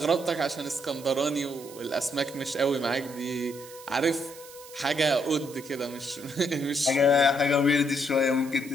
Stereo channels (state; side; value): noise; right; hiss, 18 dB below the sound